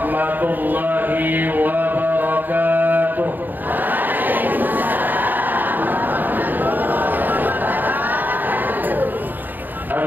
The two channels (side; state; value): left; late; 0.089 ms